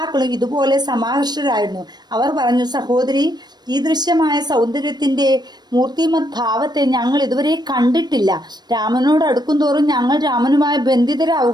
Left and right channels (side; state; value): left; late; 0.20 ms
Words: ഇതുപോലെ സമാകർഷരായിരുന്നു. അവർ പറഞ്ഞു, സഹോദരി, ഈ ദൃശ്യമായ സൗന്ദര്യത്തിന്റെ മൂർത്തിമത് ഭാവത്തെ ഞങ്ങൾ ഇതുവരെ കണ്ടിട്ടില്ല. രാമനോട് അടുക്കും തോറും ഞങ്ങൾ രാമനുമായി